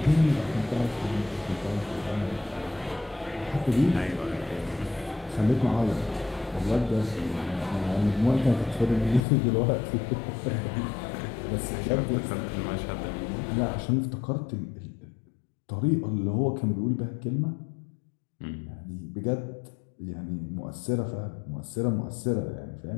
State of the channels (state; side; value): drops out; right; at 9.2 s